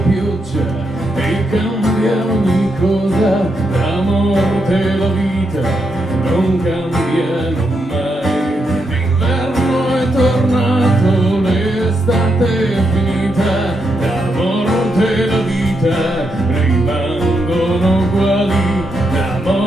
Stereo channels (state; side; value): normal; both; correlation 0.82